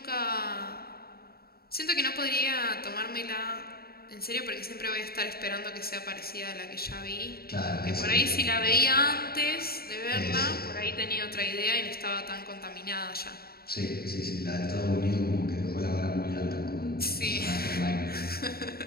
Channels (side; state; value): right; late; 0.45 ms